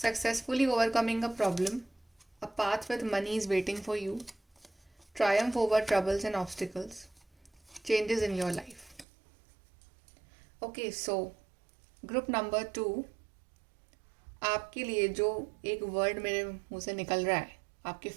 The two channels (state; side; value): drops out; left; at 9.1 s